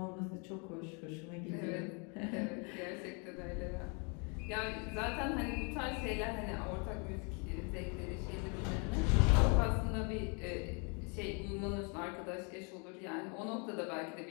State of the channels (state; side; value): quieter; right; 35.1 dB